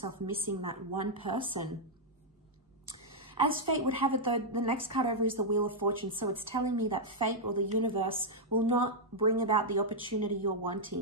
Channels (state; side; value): normal; both; correlation -0.05